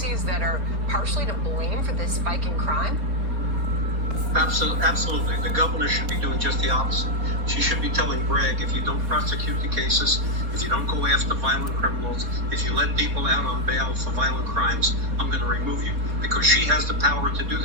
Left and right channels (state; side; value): late; left; 4.1 ms